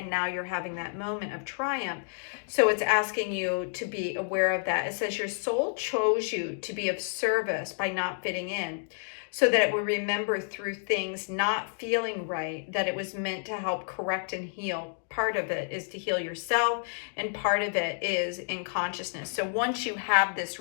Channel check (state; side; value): silent; right; digital silence